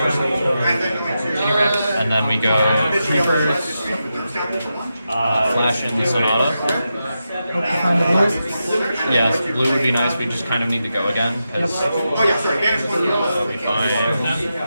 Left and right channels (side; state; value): both; inverted; correlation -0.88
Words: And then we go Keepers, flash in the Sonata. Yes, blue would be nice. We just kind of need to go again because we